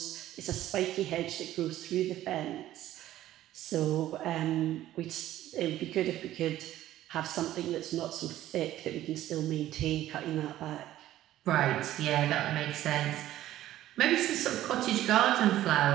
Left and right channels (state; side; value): quieter; left; 13.8 dB